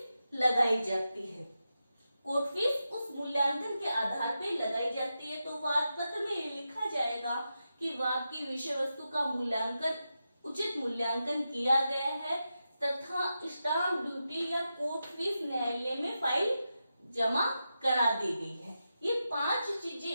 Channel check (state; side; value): inverted; both; correlation -0.89